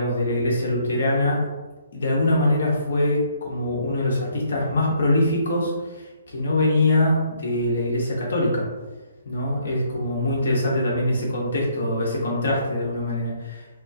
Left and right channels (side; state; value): both; inverted; correlation -0.67